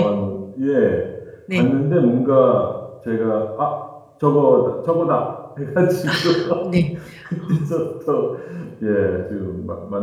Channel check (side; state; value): both; identical; correlation 1.00